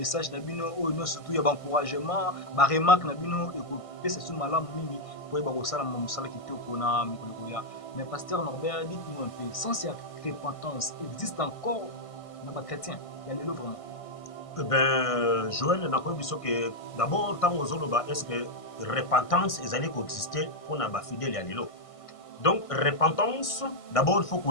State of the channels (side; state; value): right; late; 1.6 ms